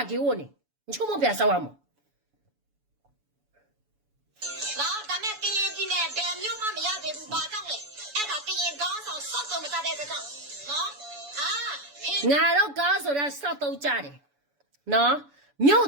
ကေဝနေချုံမပြဆောက်အောင်နော်ဒါမဲ့ကရင်ပြည်နယ်ဒဲမျိုးမှမရသေးဘူးဘာကြောင့်လဲအဲ့ဒါကရင်ကောင်းဆောင်စောက်တော့မစားတဲ့ကြောင့်နော်ငါတော့ကားဆိုတာစောက်တော့ကြတယ်နော်မြို့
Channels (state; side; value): late; left; 7.0 ms